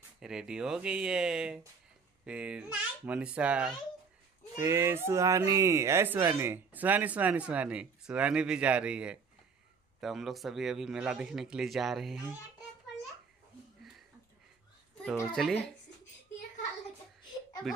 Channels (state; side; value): quieter; left; 5.4 dB